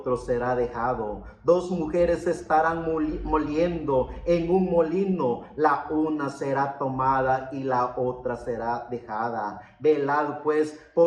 será dejado. Dos mujeres estarán moliendo en un molino, la una será tomada y la otra será dejada. Velad pues,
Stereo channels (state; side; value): identical; both; correlation 1.00